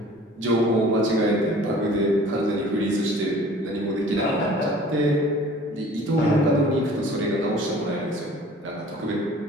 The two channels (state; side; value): normal; both; correlation 0.48